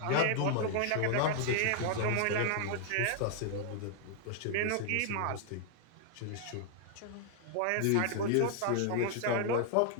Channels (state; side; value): different; both; correlation -0.01